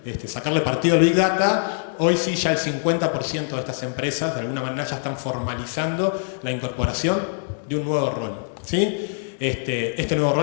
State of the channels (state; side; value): silent; right; digital silence